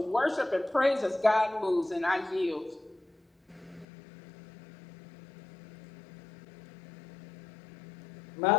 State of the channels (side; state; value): right; drops out; at 3.9 s